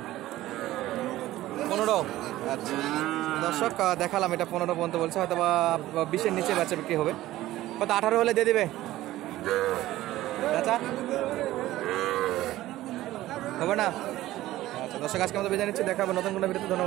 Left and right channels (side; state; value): left; quieter; 15.6 dB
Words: 15। আচ্ছা দর্শক দেখালাম, এটা 15 পর্যন্ত বলছে, হয়তো বা 20-এর নিচে বেচা বিক্রি হবে। কত 18 হলে দিয়ে দিবে চাচা? হবে না? আচ্ছা দর্শক আজকে আমাদের বিদায় নিচ্ছি, দেখা হবে নতুন কোনো ভিডিওতে।